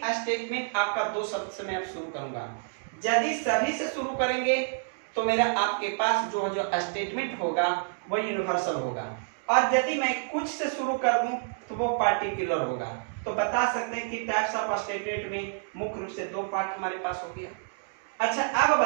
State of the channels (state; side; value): silent; left; digital silence